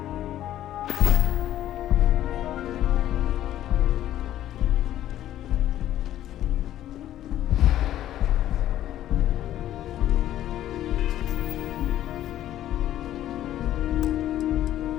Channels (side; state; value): right; quieter; 12.5 dB